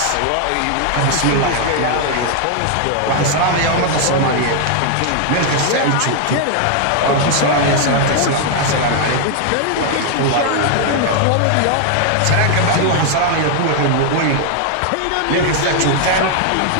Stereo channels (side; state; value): both; different; correlation 0.00